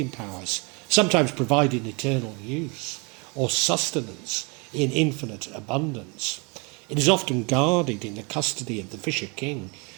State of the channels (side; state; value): left; quieter; 30.8 dB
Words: powers, sometimes providing eternal use or sustenance in infinite abundance. It is often guarded in the custody of the Fisher King